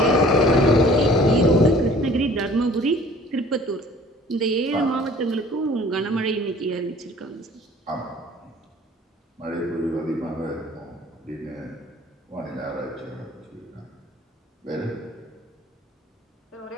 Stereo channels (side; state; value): both; normal; correlation 0.51